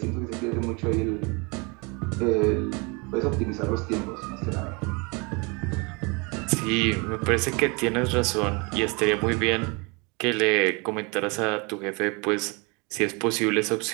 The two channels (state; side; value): quieter; left; 29.7 dB